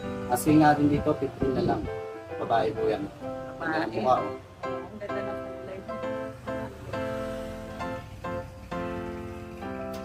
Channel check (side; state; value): both; identical; correlation 1.00